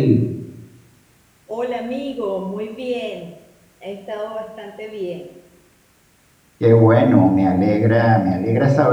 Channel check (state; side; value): identical; both; correlation 1.00